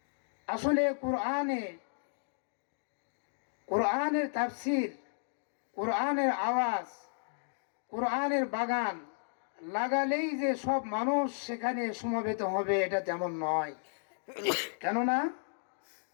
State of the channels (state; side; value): silent; right; digital silence